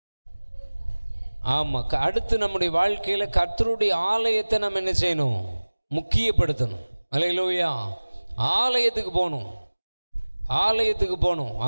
ஆமாம். அடுத்து நம்முடைய வாழ்க்கையில் கர்த்தருடைய ஆலயத்தை நம்ம என்ன செய்யணும்? முக்கியப்படுத்தணும். அல்லேலூயா. ஆலயத்துக்கு போகணும், ஆலயத்துக்கு போகணும்.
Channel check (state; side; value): inverted; both; correlation -1.00